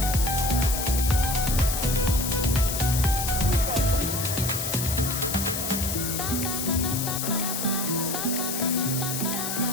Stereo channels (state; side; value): noise; left; hiss, 3 dB below the sound